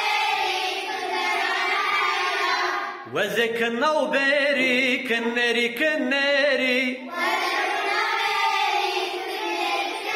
وزك النوبري كنري كنري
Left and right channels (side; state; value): both; identical; correlation 1.00